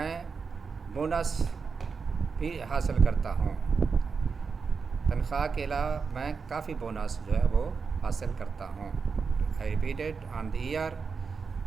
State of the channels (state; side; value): quieter; left; 5.3 dB